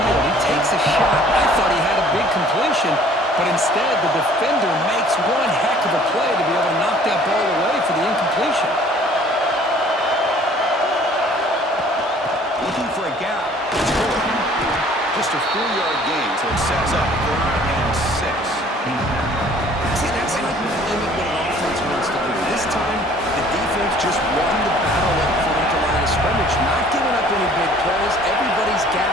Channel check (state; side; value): normal; both; correlation 0.54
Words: He takes a shot. I thought he had a big completion, Instead, the defender makes one heck of a play to be able to knock that ball away for the incompletion. Looking for a gap. It's good. Just a 4-yard gain, so it sets up 3rd and 6. See, that's how you limit what an offense wants to do. This time, the defense just won the battle up front at the line of scrimmage, not giving up any big plays. Everybody's